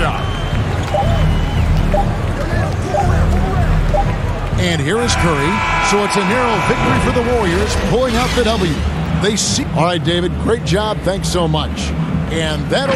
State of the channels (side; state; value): both; identical; correlation 1.00